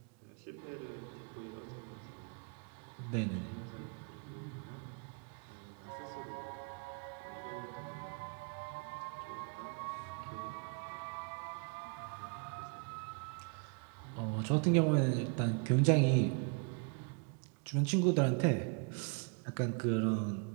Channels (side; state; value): left; quieter; 38.1 dB